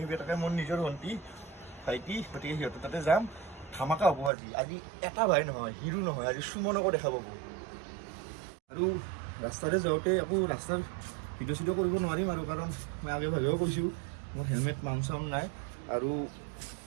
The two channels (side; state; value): left; drops out; at 4.3 s